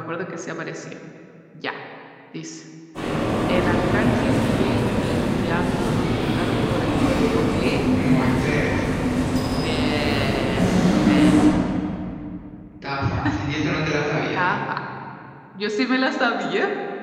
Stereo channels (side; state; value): both; identical; correlation 1.00